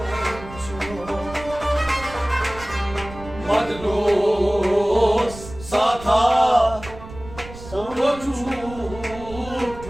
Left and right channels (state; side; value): noise; right; rumble, 15 dB below the sound